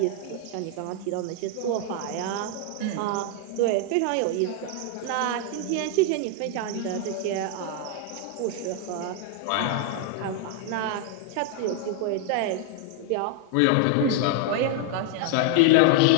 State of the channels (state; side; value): different; both; correlation 0.00